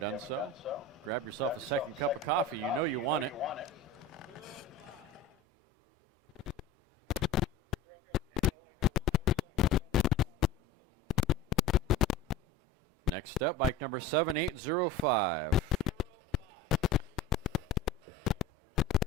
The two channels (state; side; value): quieter; right; 3.6 dB